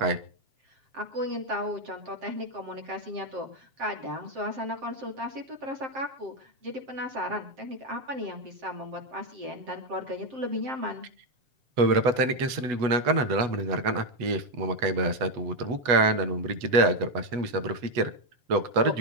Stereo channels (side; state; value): left; late; 8.1 ms